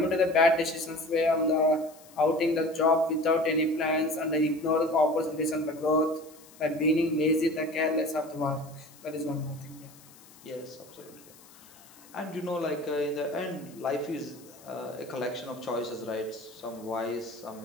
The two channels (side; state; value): left; noise; hiss, 23 dB below the sound